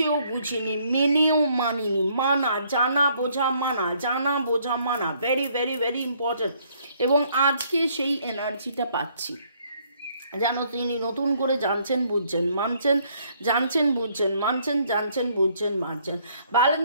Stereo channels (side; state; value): both; inverted; correlation -0.66